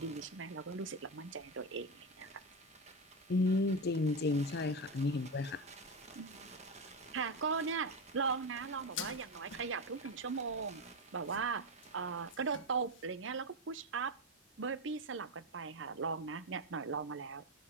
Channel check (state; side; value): normal; both; correlation 0.13